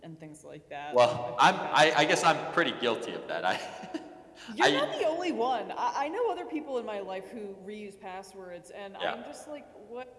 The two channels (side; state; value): both; identical; correlation 1.00